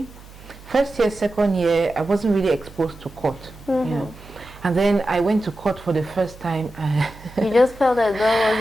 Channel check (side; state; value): right; noise; hum, 20 dB below the sound